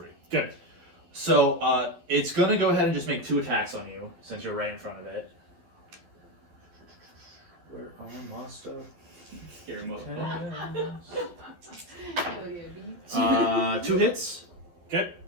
Good. So it's gonna go ahead and just make 2 attacks on you since you're right in front of it. Where armor master? Scary motherfucker. 2 hits. Okay.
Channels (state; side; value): late; left; 12 ms